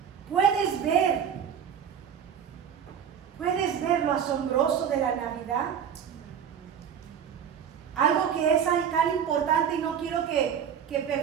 ¿Puedes ver lo asombroso de la Navidad? Algo que es tan importante y no quiero que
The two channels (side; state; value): left; quieter; 8.2 dB